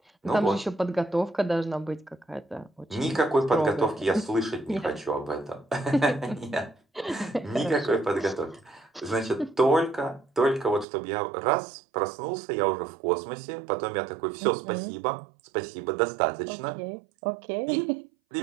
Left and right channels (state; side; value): drops out; left; at 10.9 s